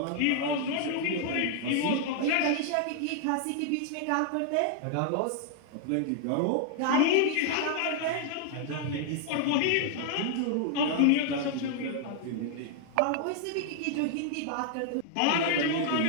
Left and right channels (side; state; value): both; different; correlation -0.01